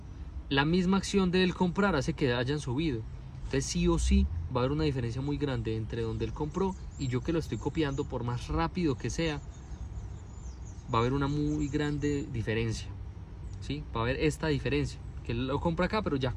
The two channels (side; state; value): both; identical; correlation 1.00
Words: la misma acción de él comprar hace que hayan subido. Entonces sí o sí va a haber una diferencia muy grande entre donde él compró y yo que lo estoy copiando, por más rápido que sea, va a haber una muy grande diferencia. ¿Sí? Va a haber esta diferencia, que él lo compra acá, pero ya